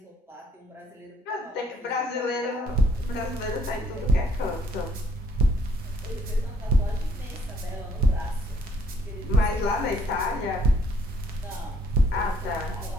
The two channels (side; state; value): both; normal; correlation 0.65